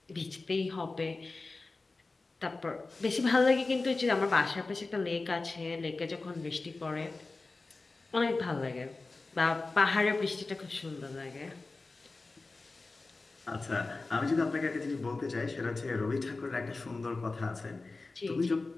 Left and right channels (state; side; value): quieter; right; 3.6 dB